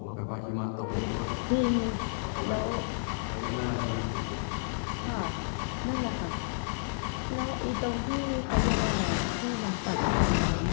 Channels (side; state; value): right; silent; digital silence